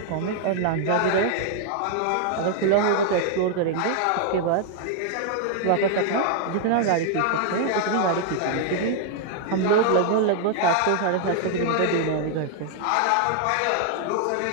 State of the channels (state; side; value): different; both; correlation 0.00